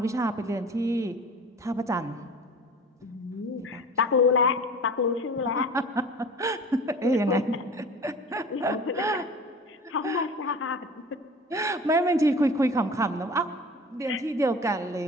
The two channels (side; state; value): both; normal; correlation 0.40